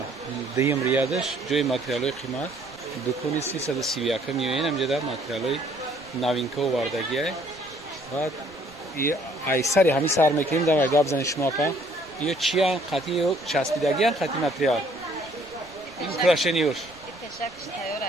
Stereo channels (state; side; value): noise; right; rumble, 25 dB below the sound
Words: дуюм риядаш ҷои материалҳои қимат дукони 331 миёен ҳамҷода материалҳои новинка овардагие. Баъд айсари ҳами сар мекунем дар гап занед шумо апа. Ё чия қати ё часпидагиян қати материал. Украшениёш. Пешакш тайёр